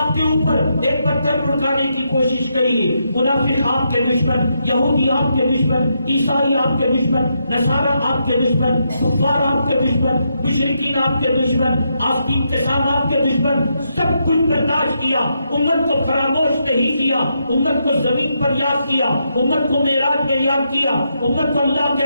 کے اوپر ایک پتھر لڑکانے کی کوشش گئی۔ منافق آپ کے دشمن، یہودی آپ کے دشمن، عیسائی آپ کے دشمن، نصارہ آپ کے دشمن، کفار آپ کے دشمن، مشرکین آپ کے دشمن، آستین کے ساتھ آپ کے دشمن، سب کچھ برداشت کیا، امت کو فراموش نہیں کیا، امت کو زمین پر یاد کیا، امت کو معراج میں یاد کیا، امت کو اللہ کے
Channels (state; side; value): inverted; both; correlation -0.81